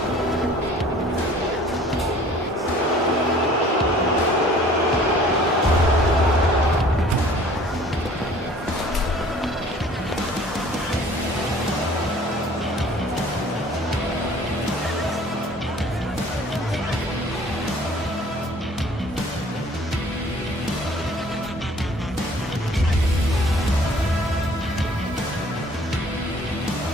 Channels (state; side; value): normal; both; correlation 0.52